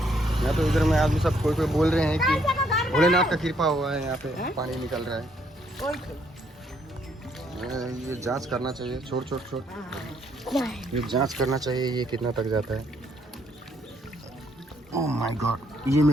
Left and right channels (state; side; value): normal; both; correlation 0.70